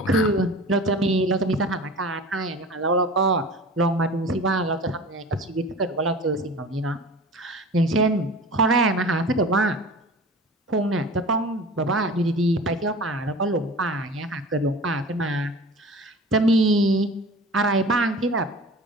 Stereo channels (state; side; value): normal; both; correlation 0.38